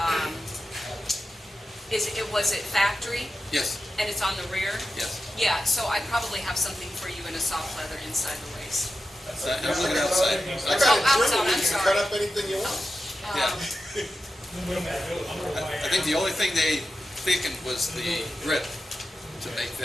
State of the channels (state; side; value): normal; both; correlation 0.91